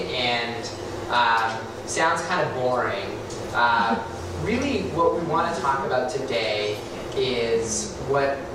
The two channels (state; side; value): identical; both; correlation 1.00